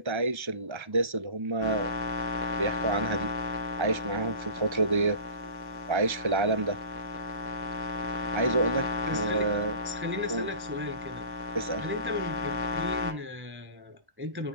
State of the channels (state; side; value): late; left; 1.1 ms